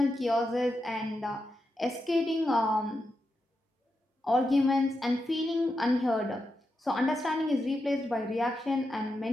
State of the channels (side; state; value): both; normal; correlation 0.87